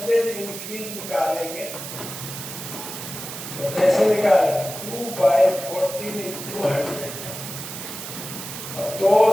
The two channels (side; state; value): right; noise; hiss, 9 dB below the sound